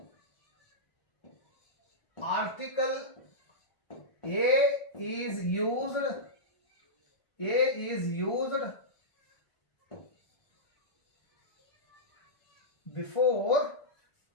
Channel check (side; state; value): right; late; 1.4 ms